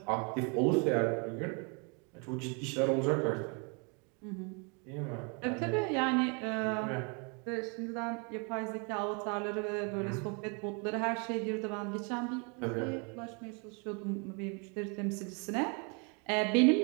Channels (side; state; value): left; quieter; 34.4 dB